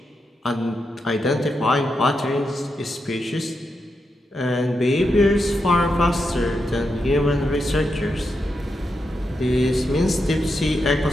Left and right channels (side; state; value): both; normal; correlation 0.85